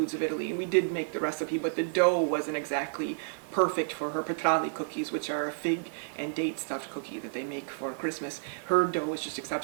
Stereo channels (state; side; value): silent; left; digital silence